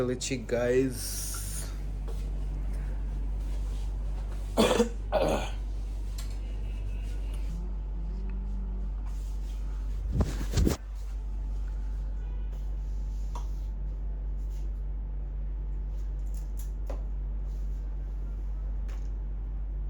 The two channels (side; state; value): both; identical; correlation 1.00